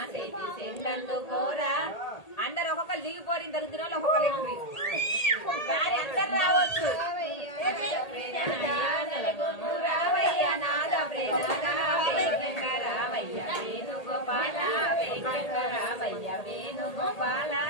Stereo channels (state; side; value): late; right; 1.8 ms